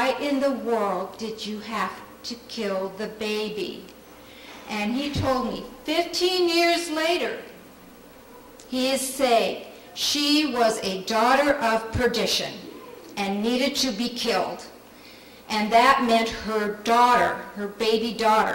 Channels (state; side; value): identical; both; correlation 1.00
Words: in the world did you have to kill the baby? And he told me 15 years later, he is saying she was a daughter of perdition and needed to be killed. And that meant her daughter, her baby